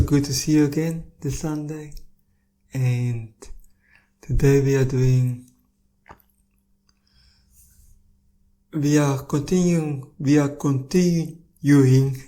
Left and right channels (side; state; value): both; identical; correlation 1.00